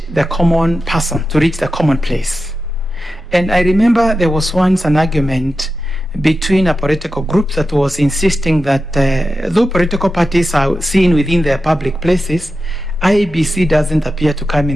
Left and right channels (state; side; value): normal; both; correlation 0.91